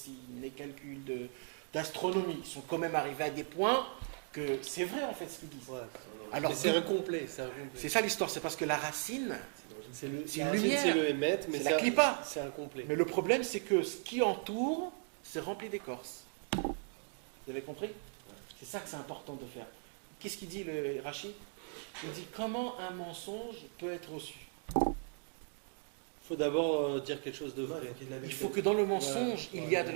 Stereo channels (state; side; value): silent; left; 53 dB below the other